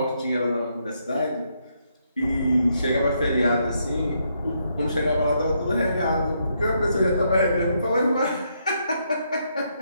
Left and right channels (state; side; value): inverted; both; correlation -0.76